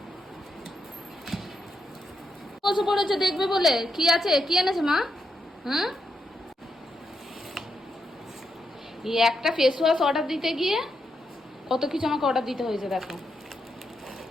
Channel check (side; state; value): both; normal; correlation 0.83